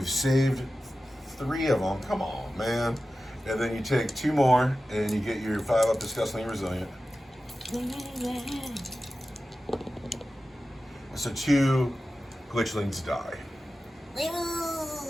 saved 3 of them. Come on, man. And then you take 2 more and you get your 5 up disgustingly resilient. So 2 glitchlings die.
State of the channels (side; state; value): both; normal; correlation 0.94